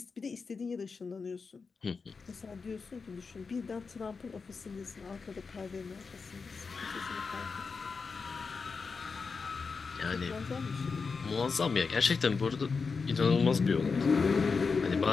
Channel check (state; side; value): quieter; right; 4.9 dB